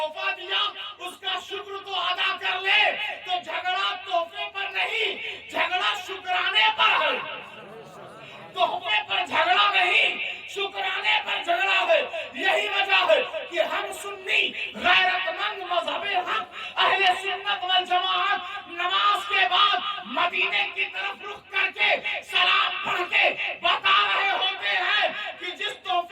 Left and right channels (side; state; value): both; identical; correlation 1.00